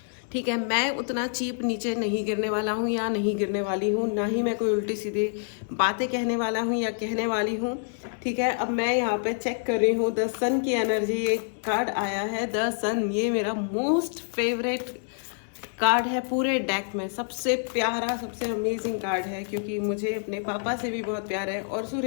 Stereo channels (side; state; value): right; silent; digital silence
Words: ठीक है, मैं उतना चीप नीचे नहीं गिरने वाला हूँ या नहीं गिरने वाली हूँ, ना ही मैं कोई उल्टी सीधी बातें कहने वाला हूँ या कहने वाली हूँ। ठीक है, अब मैं यहाँ पे चेक कर रही हूँ द सन की एनर्जी। एक कार्ड आया है द सन, ये मेरा मोस्ट फेवरेट कार्ड है पूरे डेक में, सबसे प्यारा, सबसे अमेजिंग कार्ड है, क्योंकि मुझे अपने पापा से भी बहुत प्यार है और